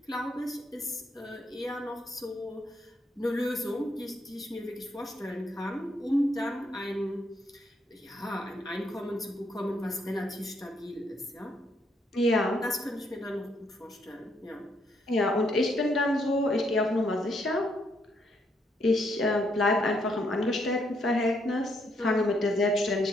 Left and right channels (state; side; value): normal; both; correlation 0.74